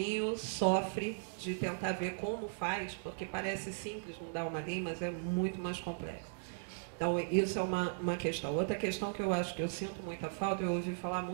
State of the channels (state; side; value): silent; left; digital silence